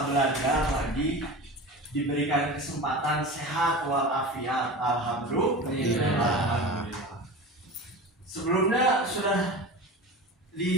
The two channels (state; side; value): normal; both; correlation 0.32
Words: belajar lagi, diberikan kesempatan sehat walafiat. Alhamdulillah. Sebelumnya sudah